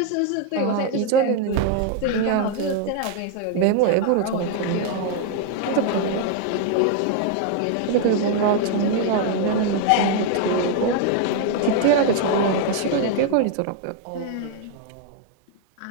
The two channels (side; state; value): both; different; correlation 0.00